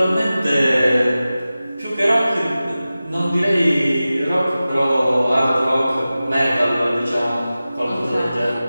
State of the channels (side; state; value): both; inverted; correlation -0.95